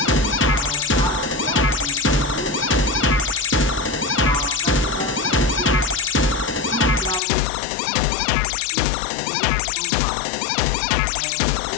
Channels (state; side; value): drops out; right; at 7.2 s